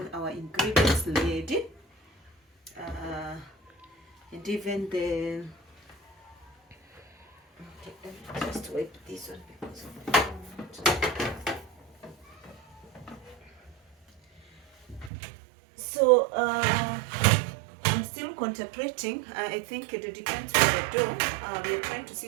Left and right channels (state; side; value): drops out; left; at 15.1 s